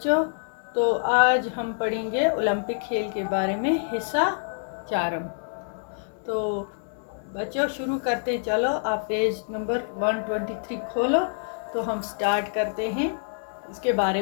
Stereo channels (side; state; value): right; silent; digital silence